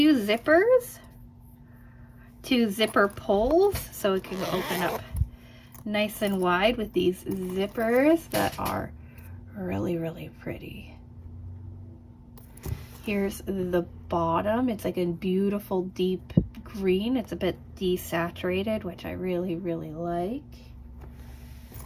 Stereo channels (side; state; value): both; identical; correlation 1.00